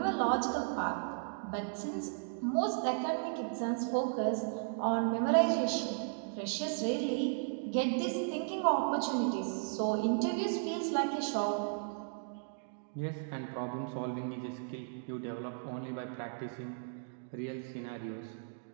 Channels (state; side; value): silent; left; digital silence